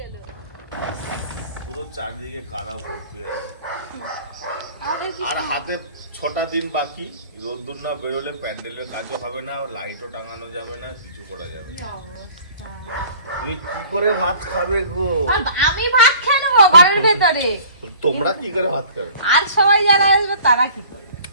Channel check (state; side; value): inverted; both; correlation -0.49